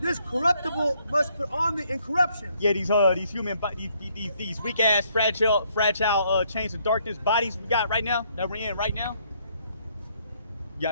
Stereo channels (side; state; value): both; inverted; correlation -0.69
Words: corruptible must put on the incorruption. Yeah, these human, these weak ass, fragile chains of darkness bodies we got right now, that we're in right now. You